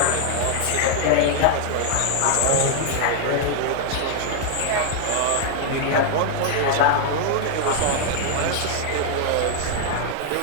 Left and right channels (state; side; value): different; both; correlation 0.00